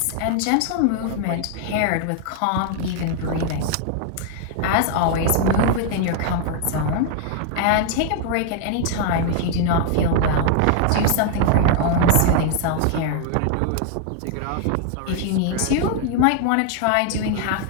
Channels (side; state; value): both; different; correlation 0.00